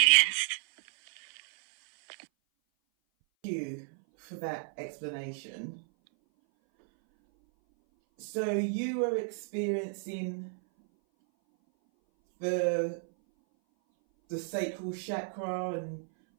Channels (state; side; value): silent; left; 56 dB below the other